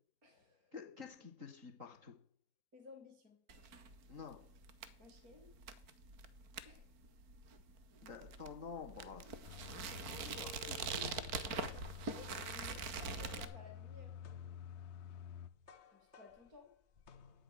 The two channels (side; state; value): left; late; 4.4 ms